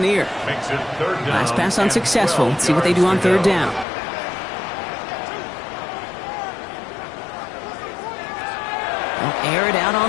Last pass unsuccessful. Let's see what they do on 3rd down. They'll air it out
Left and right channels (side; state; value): right; drops out; at 3.9 s